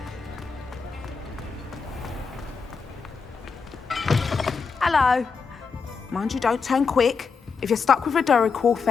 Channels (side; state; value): right; quieter; 5.2 dB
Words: Hello. Mind you, don't turn quick. If you're stuck with a Duracell